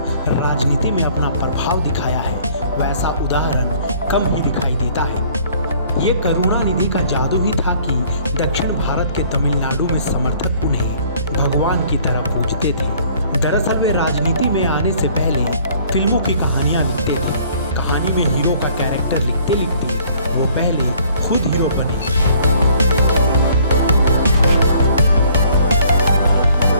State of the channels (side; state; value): both; inverted; correlation -0.57